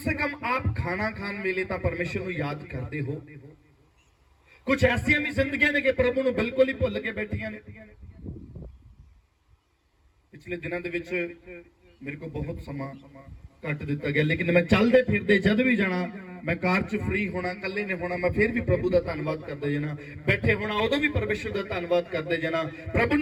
कम आप खाना खान वेले तो परमेश्वर को याद करते हो। कुछ ऐसिया भी जिंदगियां ने कि प्रभु को बिल्कुल ही भुल के बैठिया ने। पिछले दिनों के मेरे को बहुत समा कट दिता गया, लेकिन मैं चलते फिरते जद भी जाना, मैं कार च फ्री होना, कल्ले ने होना, मैं फिर भी प्रभु का धन्यवाद करते जाना, बैठे होना उदों भी परमेश्वर का धन्यवाद करते जाना, प्रभु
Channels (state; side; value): identical; both; correlation 1.00